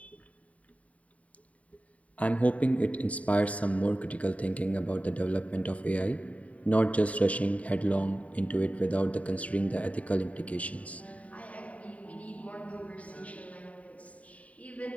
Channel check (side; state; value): right; late; 0.068 ms